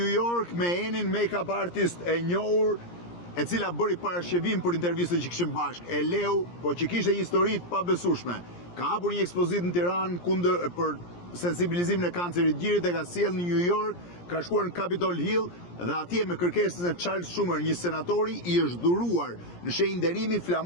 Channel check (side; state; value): right; late; 17 ms